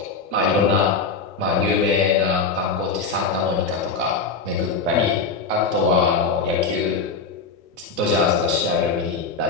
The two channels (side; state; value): right; quieter; 4.7 dB